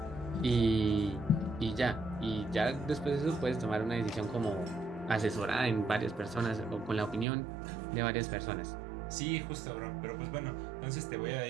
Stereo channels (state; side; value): drops out; left; at 7.2 s